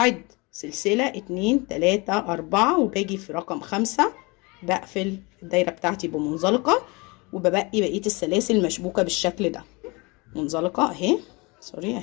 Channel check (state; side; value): quieter; right; 27.0 dB